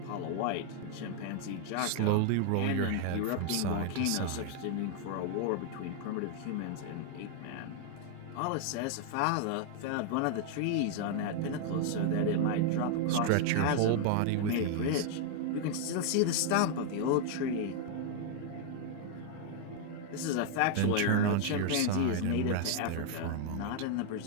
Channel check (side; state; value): both; different; correlation 0.00